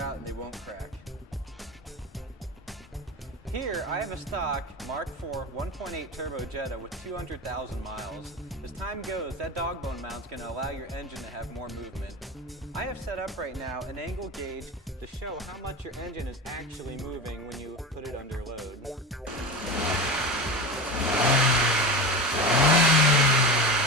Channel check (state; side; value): normal; both; correlation 0.26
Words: out and they won't crack. Here, I have a stock Mark IV 1.8 turbo Jetta with 200,000 miles. As time goes, that Dogbone mount's going to allow your engine to have more movement. I have set up right now an angle gauge to show how much your engine is actually moving when you put it under load.